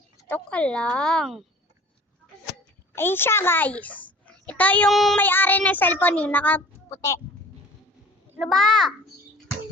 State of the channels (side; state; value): both; normal; correlation 0.46